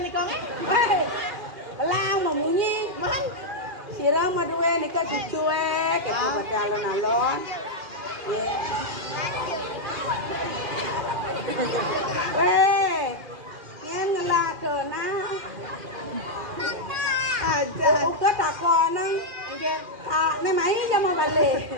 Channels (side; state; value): left; late; 2.4 ms